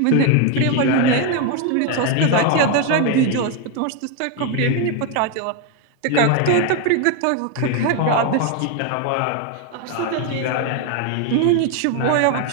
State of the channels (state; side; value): different; both; correlation 0.01